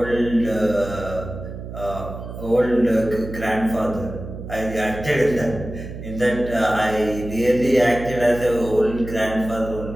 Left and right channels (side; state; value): right; noise; hum, 10 dB below the sound